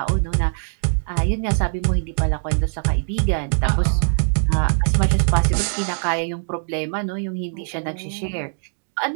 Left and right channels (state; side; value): silent; left; digital silence